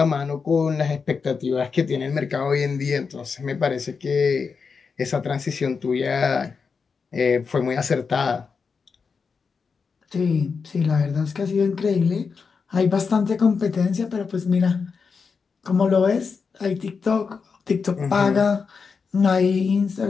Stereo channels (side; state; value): right; quieter; 5.3 dB